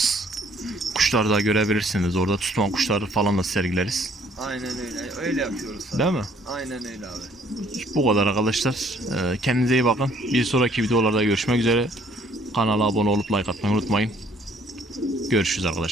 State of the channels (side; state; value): both; normal; correlation 0.62